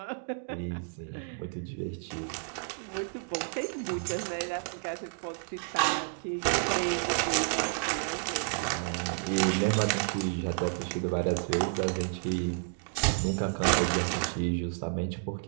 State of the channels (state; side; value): silent; left; digital silence